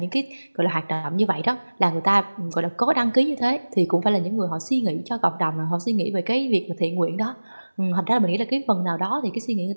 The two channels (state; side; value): inverted; both; correlation -1.00